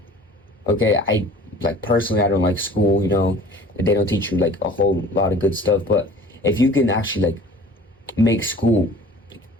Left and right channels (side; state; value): both; normal; correlation 0.46